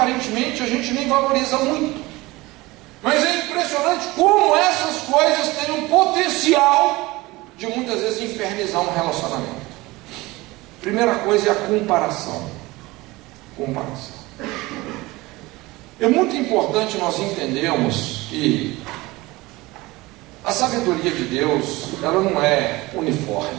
a gente nem valoriza muito, mas é impressionante como essas coisas têm um potencial de muitas vezes infernizar um relacionamento. Primeira coisa é a comparação. É muito importante nós entendermos que a sabedoria de Deus, ela não é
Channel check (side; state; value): left; quieter; 20.9 dB